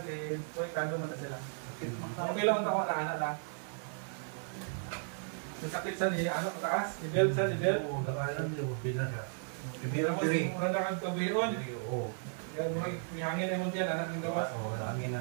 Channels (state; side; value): silent; left; 54 dB below the other